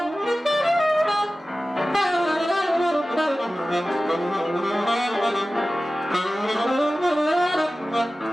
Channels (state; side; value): normal; both; correlation 0.96